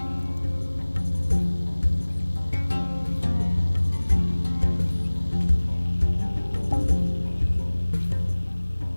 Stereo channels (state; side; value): inverted; both; correlation -1.00